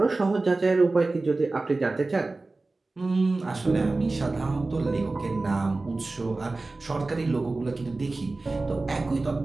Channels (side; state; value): left; quieter; 3.3 dB